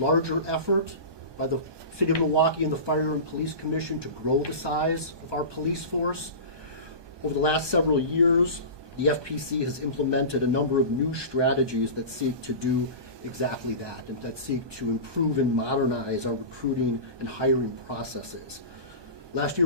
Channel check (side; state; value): left; late; 1.2 ms